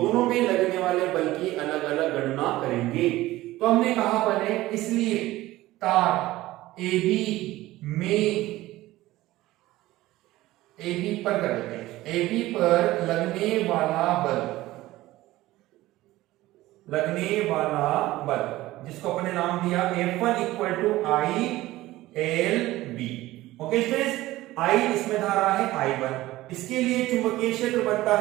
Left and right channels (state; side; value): quieter; left; 17.1 dB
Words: में लगने वाले बल की अलग अलग गणना करेंगे। तो हमने कहा बने, इसलिए तार AB पर लगने वाला बल जिसको अपने नाम दिया F1 equal to ILB। Okay students, I इसमें धारा है I1, इसके लिए चुंबकीय क्षेत्र बनता